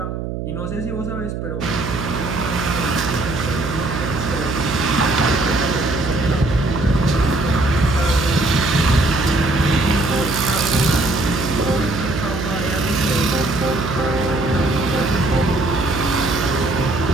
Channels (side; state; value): right; noise; hum, 5 dB below the sound